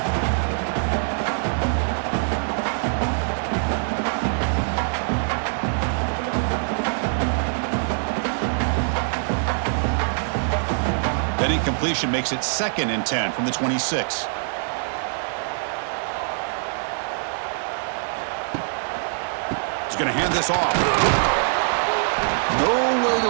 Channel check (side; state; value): left; silent; digital silence